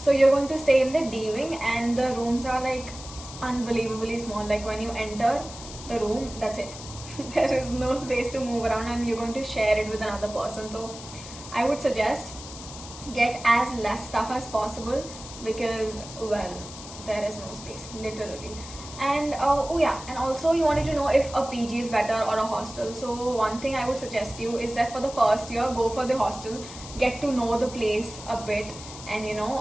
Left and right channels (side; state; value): left; noise; hiss, 13 dB below the sound